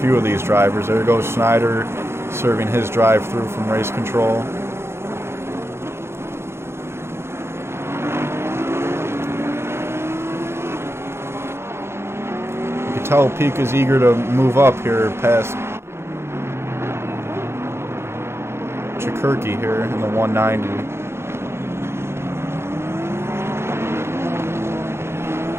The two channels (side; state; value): left; late; 0.12 ms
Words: of these drivers. There goes Schneider serving his drive-through from race control. You can tell Pika's eager to move up here past Chikirki here in the 190.